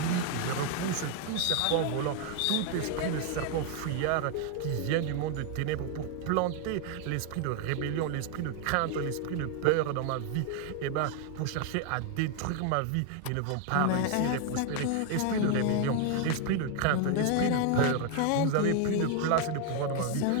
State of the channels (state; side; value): different; both; correlation 0.01